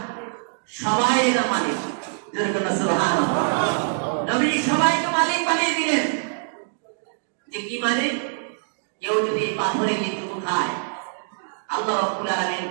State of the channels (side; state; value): left; silent; digital silence